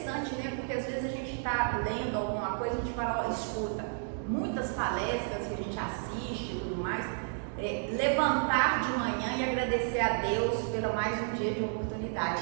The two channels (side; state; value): left; silent; 57 dB below the other